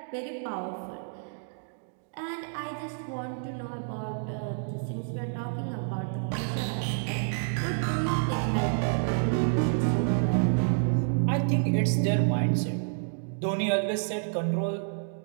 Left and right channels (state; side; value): silent; left; digital silence